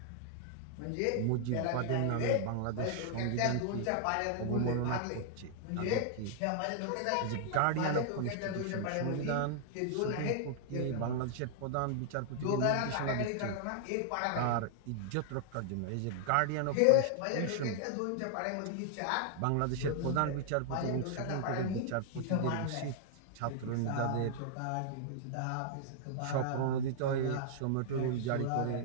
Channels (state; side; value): different; both; correlation -0.01